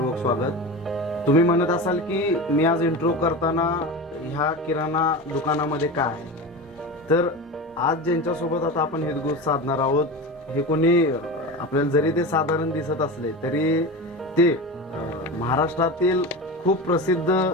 स्वागत. तुम्ही म्हणत असाल की मी आज इंट्रो करताना ह्या किराणा दुकानामध्ये काय आहे, तर आज ज्यांच्यासोबत आता आपण हितगुज साधणार आहोत, हे कोणी आपल्याला जरी ते साधारण दिसत असले तरी ते महाराष्ट्रातील खूप प्रसिद्ध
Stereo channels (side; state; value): both; normal; correlation 0.27